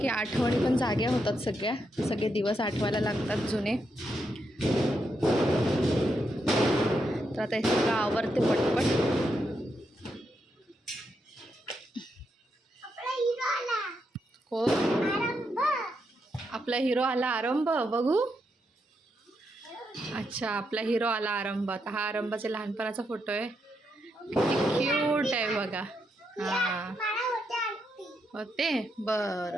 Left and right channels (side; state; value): both; normal; correlation 0.81